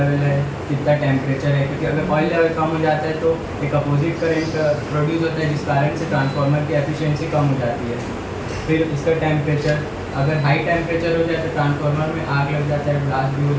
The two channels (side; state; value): both; identical; correlation 1.00